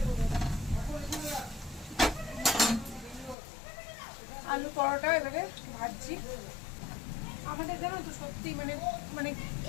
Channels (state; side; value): drops out; right; at 3.4 s